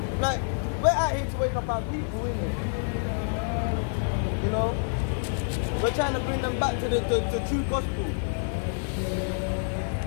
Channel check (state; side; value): silent; right; digital silence